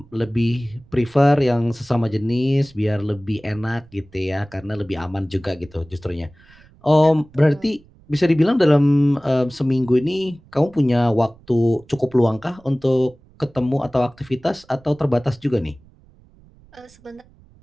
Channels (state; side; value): noise; right; rumble, 27 dB below the sound